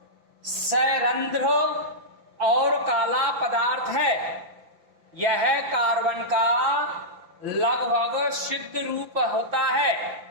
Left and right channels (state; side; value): late; left; 6.1 ms